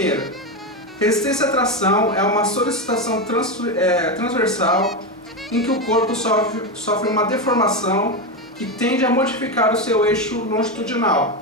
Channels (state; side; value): normal; both; correlation 0.13